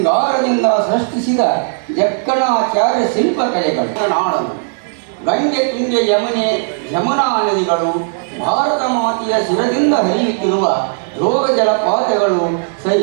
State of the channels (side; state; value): left; silent; digital silence